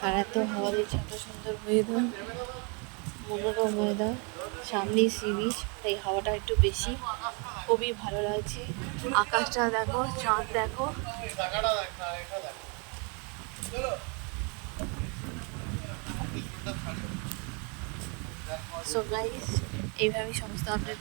আর এত হাওয়া দিচ্ছে, এত সুন্দর ওয়েদার, মনোরম ওয়েদার, সামনেই সি বিচ, তাই হাওয়াটা একটু বেশি, খুবই ভালো লাগছে। আকাশটা দেখো, চাঁদ দেখো। সো গাইস, এইভাবেই সমস্ত আপডেট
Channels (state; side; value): quieter; left; 34.0 dB